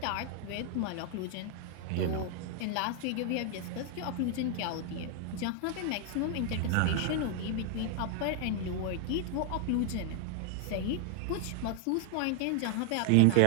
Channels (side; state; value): both; different; correlation 0.00